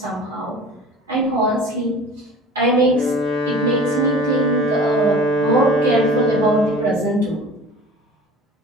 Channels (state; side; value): normal; both; correlation 0.42